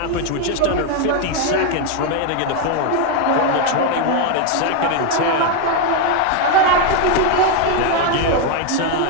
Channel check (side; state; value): both; different; correlation 0.01